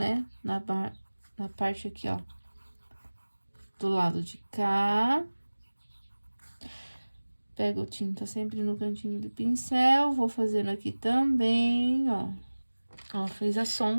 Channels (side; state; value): both; inverted; correlation -1.00